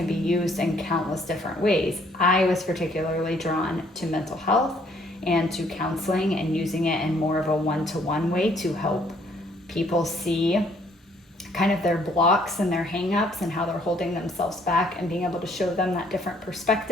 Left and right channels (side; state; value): both; normal; correlation 0.64